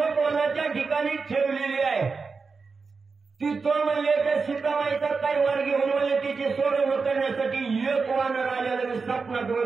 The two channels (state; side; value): quieter; left; 4.7 dB